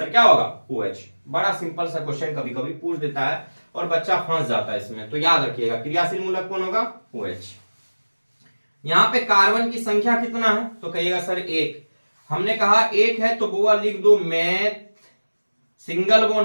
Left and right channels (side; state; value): both; inverted; correlation -1.00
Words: क्या होगा? OH। बड़ा सिंपल सा क्वेश्चन कभी कभी पूछ देता है और बच्चा फंस जाता है इसमें, तो याद रखिएगा क्रियाशील मूलक कौन होगा? OH। यहां पे कार्बन की संख्या कितना है, तो कहिएगा सर 1। हमने कहा 1 है तो बुआ लिख दो मैथ, सिंगल